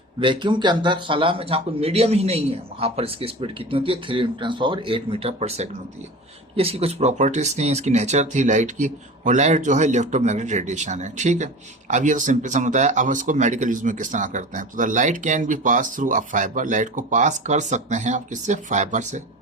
vacuum के अंदर खला में जहाँ कोई मीडियम ही नहीं है, वहाँ पर इसकी स्पीड कितनी होती है, 3×8 मीटर पर सेकंड होती है। ये इसकी कुछ प्रॉपर्टीज थी, इसकी नेचर थी लाइट की। और लाइट जो है इलेक्ट्रोमैग्नेटिक रेडिएशन है। ठीक है, अब ये तो सिंपल समझता है। अब इसको मेडिकल यूज में किस तरह करते हैं, तो the light can be pass through a fibre, light को पास कर सकते हैं आप किससे, फाइबर से।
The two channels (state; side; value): normal; both; correlation 0.34